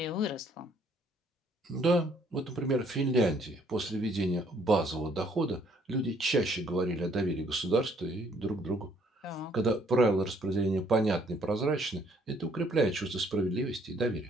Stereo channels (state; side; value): normal; both; correlation 0.64